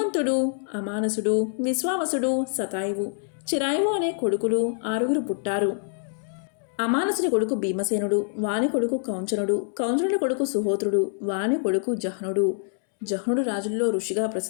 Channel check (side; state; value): right; silent; 61 dB below the other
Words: అమానసుడు, విశ్వావసుడు, శతాయువు, చిరాయువు అనే కొడుకులు 6 పుట్టారు. అమానసుని కొడుకు భీమసేనుడు, వాని కొడుకు కౌంచనుడు, కౌంచనుడి కొడుకు సుహోత్రుడు, వాని కొడుకు జహ్నుడు. జహ్నుడు రాజుల్లో ఋషిగా